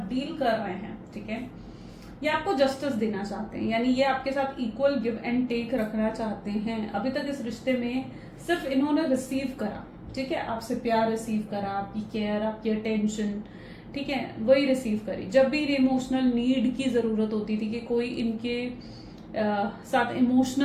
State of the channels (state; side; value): identical; both; correlation 1.00